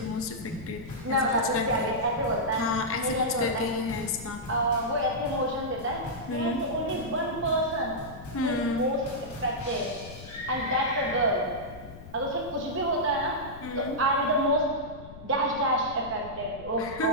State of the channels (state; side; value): noise; left; rumble, 15 dB below the sound